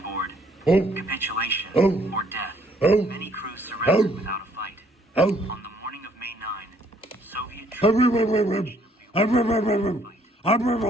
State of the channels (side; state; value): both; normal; correlation 0.65